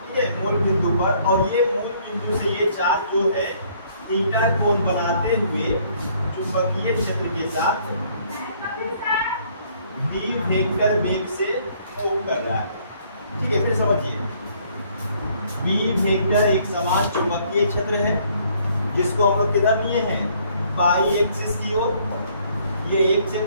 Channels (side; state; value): both; inverted; correlation -0.63